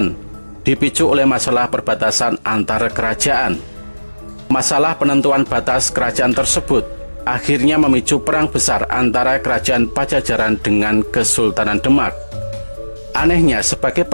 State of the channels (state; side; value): inverted; both; correlation -1.00